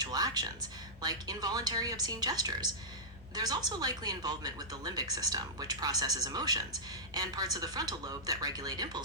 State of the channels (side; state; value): right; noise; hum, 30 dB below the sound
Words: actions, like involuntary obscene gestures. There's also likely involvement with the limbic system, which processes emotions, and parts of the frontal lobe that regulate